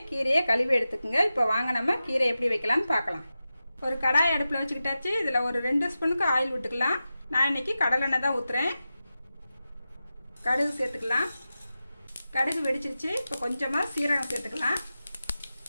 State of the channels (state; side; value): inverted; both; correlation -0.93